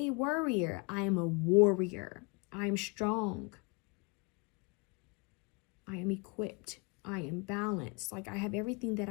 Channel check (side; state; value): right; quieter; 31.6 dB